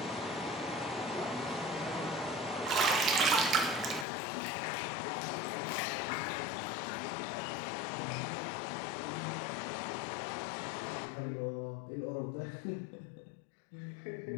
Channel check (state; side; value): drops out; right; at 4.0 s